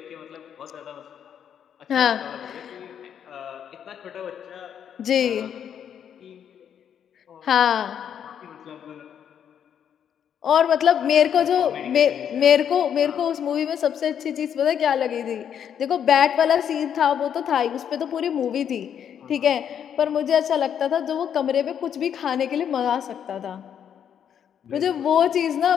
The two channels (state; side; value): quieter; right; 8.7 dB